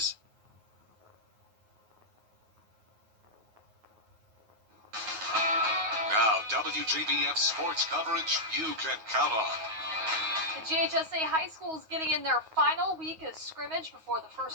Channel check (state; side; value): late; left; 9.4 ms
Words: Now, WJBF sports coverage you can count on. The GHSA High School is getting in their final week of scrimmage before the